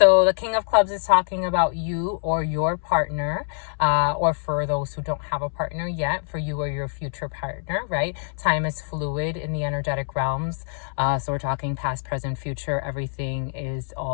the King of Clubs is talking about you or your partner, or for those who don't have a partner yet, for you or your future partner, right? Time is fluid in the energetic realms. So we're talking past, present, future. Everything is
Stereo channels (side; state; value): right; silent; 62 dB below the other